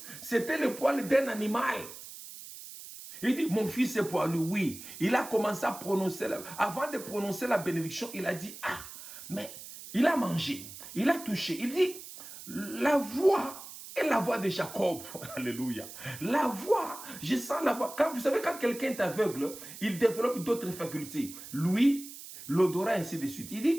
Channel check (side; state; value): right; noise; hiss, 14 dB below the sound